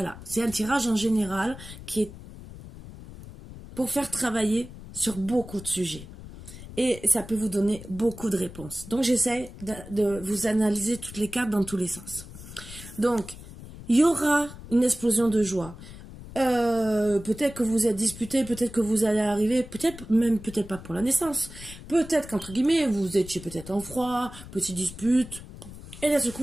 c'est un tirage en général qui est pour faire travailler sur beaucoup de sujets. Et ça peut vous donner beaucoup de réponses. Donc j'essaie de vous analyser toutes les cartes dans tous les sens. Donc, il y aura une explosion de joie. Peut-être que vous êtes disputé, peut-être que vous allez arriver, peut-être pas pour la naissance. Peut-être qu'entre guillemets, vous étiez peut-être en froid, petite dispute. Et d'un seul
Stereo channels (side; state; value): left; noise; rumble, 15 dB below the sound